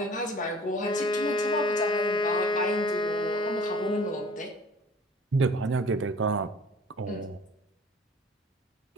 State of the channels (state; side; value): normal; both; correlation 0.47